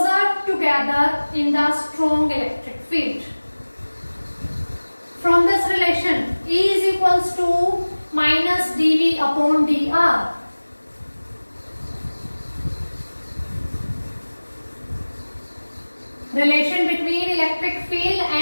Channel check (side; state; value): both; inverted; correlation -1.00